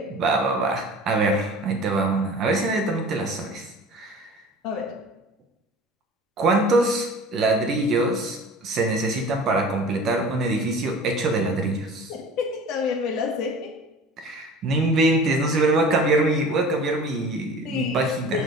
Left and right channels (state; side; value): normal; both; correlation 0.42